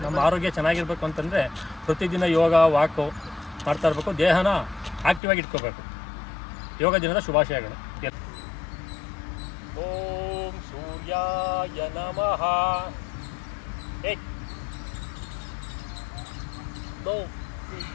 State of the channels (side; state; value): right; drops out; at 5.2 s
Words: ನಮ್ಮ ಆರೋಗ್ಯ ಚೆನ್ನಾಗಿರ್ಬೇಕು ಅಂತಂದರೆ ಪ್ರತಿದಿನ ಯೋಗ ವಾಕು ಮಾಡ್ತಾ ಇರಬೇಕು, ದೇಹನ ಆಕ್ಟಿವಾಗಿ ಇಟ್ಕೋಬೇಕು. ಯೋಗ ದಿನದ ಶುಭಾಶಯಗಳು. ಓಂ ಸೂರ್ಯಾಯ ನಮಃ. 1 2